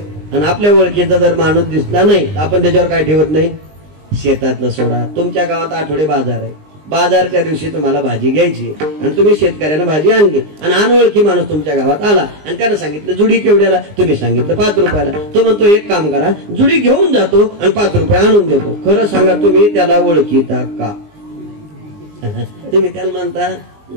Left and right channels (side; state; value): left; late; 19 ms